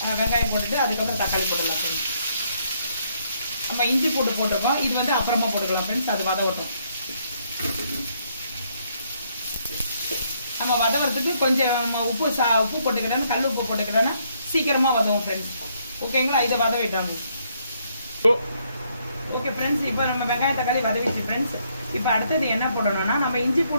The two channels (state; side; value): inverted; both; correlation -0.71